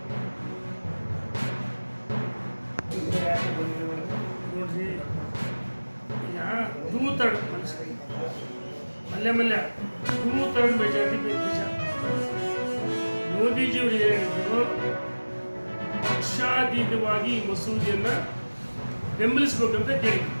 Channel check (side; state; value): both; inverted; correlation -1.00